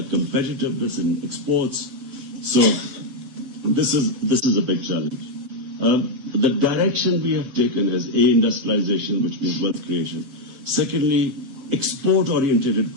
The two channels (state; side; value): late; left; 7.5 ms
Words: competitiveness in exports. So this is a big challenge. The direction we have taken is industrialization, which means wealth creation. Secondly, export-oriented